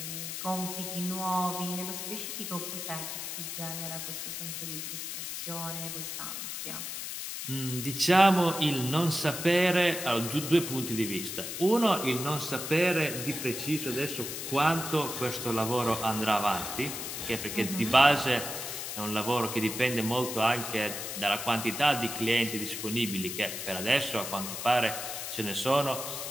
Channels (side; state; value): left; noise; hiss, 6 dB below the sound